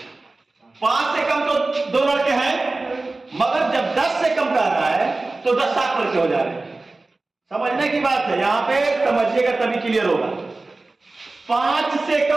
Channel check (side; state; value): left; quieter; 3.3 dB